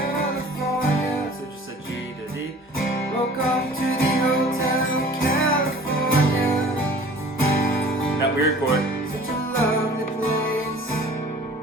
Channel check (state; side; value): normal; both; correlation 0.47